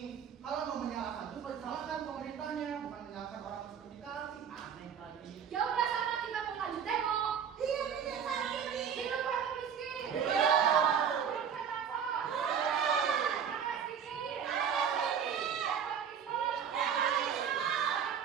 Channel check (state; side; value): quieter; left; 7.7 dB